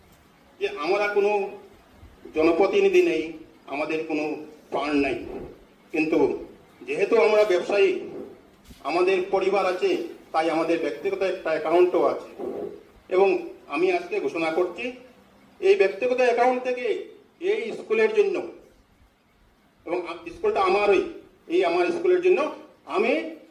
যে আমরা কোনো জনপ্রতিনিধি নেই, আমাদের কোনো ফান্ড নাই, কিন্তু যেহেতু আমরা ব্যবসায়ী, আমাদের পরিবার আছে, তাই আমাদের ব্যক্তিগত একটা অ্যাকাউন্টও আছে। এবং আমি আজকে ঘোষণা করছি এই ব্যক্তিগত অ্যাকাউন্ট থেকে এই স্কুলের জন্য, এবং স্কুলটা আমারই, এই আমার স্কুলের জন্য আমি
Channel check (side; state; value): both; identical; correlation 1.00